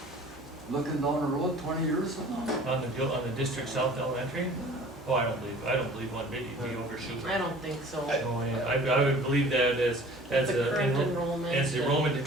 Looking down the road 20 years from now? On the District South Elementary? Oh, I don't believe one bit you'd be overshooting. I don't think so. Oh, yeah, I would believe that as The current the enrollment. as the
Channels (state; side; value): normal; both; correlation 0.47